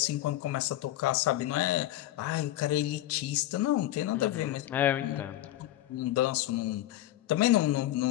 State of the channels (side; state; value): right; quieter; 14.5 dB